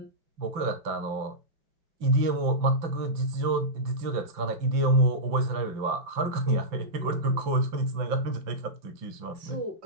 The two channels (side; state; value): left; late; 5.9 ms